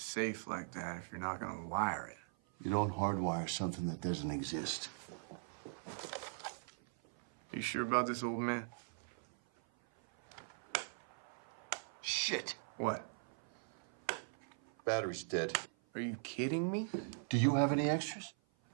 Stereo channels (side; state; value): left; silent; 51 dB below the other